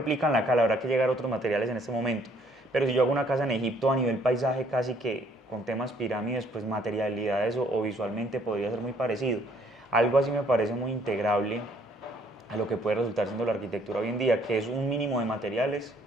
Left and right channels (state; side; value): normal; both; correlation 0.64